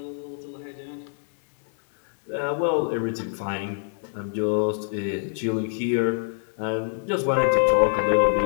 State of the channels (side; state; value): right; silent; digital silence